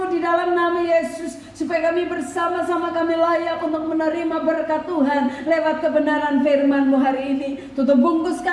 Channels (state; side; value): identical; both; correlation 1.00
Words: di dalam nama Yesus, supaya kami bersama-sama kami layak untuk menerima berkat Tuhan lewat kebenaran firman-Mu hari ini. Tutup bungkus